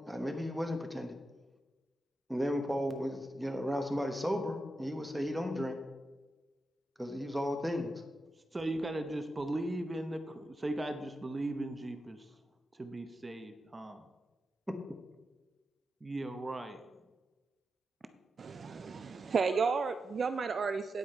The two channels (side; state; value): both; normal; correlation 0.89